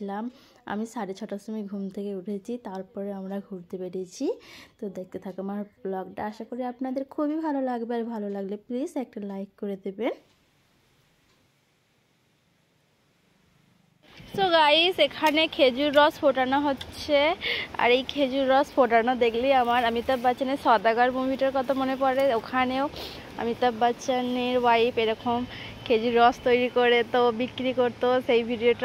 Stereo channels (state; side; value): identical; both; correlation 1.00